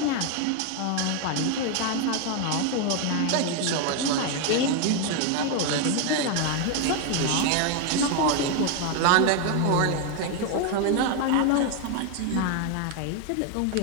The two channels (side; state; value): both; different; correlation 0.01